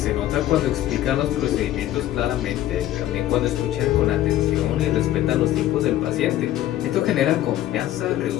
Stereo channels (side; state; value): right; quieter; 13.3 dB